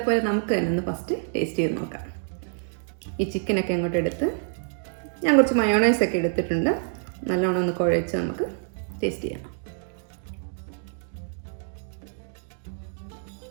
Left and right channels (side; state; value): left; silent; digital silence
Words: പോലെ നമുക്ക് തന്നെ ഒന്ന് ഫസ്റ്റ് ടേസ്റ്റ് ചെയ്ത് നോക്കാം. ഈ ചിക്കനൊക്കെ അങ്ങോട്ട് എടുത്ത് ഞാൻ കുറച്ച് മയോണൈസൊക്കെ എടുത്തിട്ടുണ്ട്. നല്ലോണം ഒന്ന് കുഴച്ച് നമുക്ക് ടേസ്റ്റ് ചെയ്യാം.